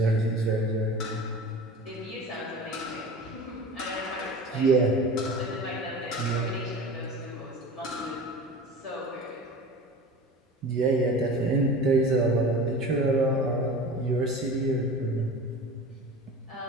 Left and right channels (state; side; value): normal; both; correlation 0.36